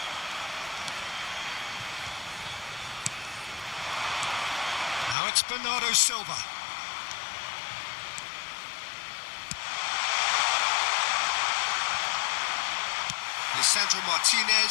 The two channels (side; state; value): right; drops out; at 5.2 s